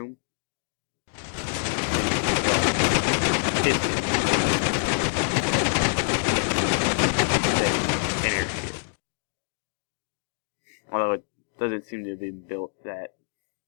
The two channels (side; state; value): right; silent; digital silence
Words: An airship. Although it doesn't seem to be built that.